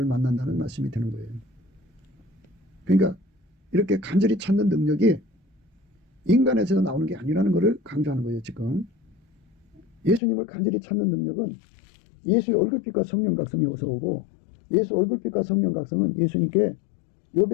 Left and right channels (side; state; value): right; drops out; at 10.2 s